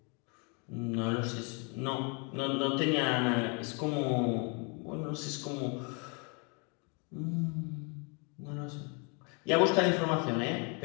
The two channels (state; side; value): quieter; right; 34.4 dB